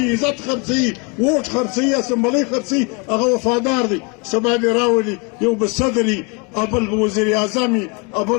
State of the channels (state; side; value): quieter; right; 31.0 dB